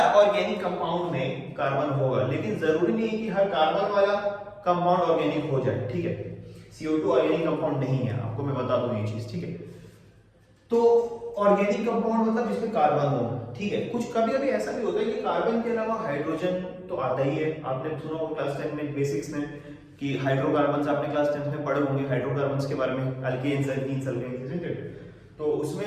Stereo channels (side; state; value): both; identical; correlation 1.00